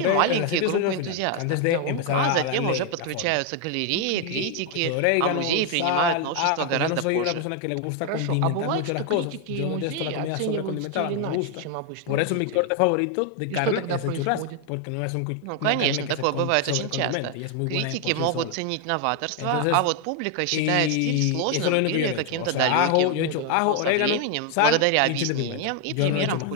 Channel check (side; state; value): both; different; correlation 0.01